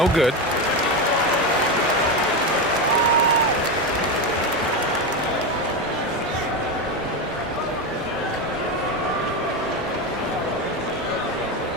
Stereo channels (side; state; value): both; normal; correlation 0.14